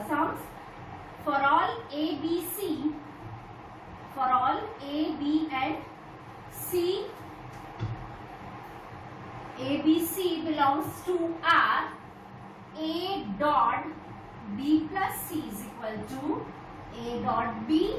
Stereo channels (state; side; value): identical; both; correlation 1.00